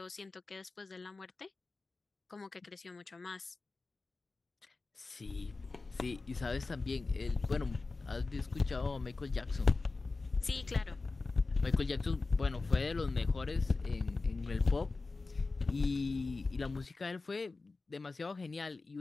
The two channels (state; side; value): quieter; right; 3.7 dB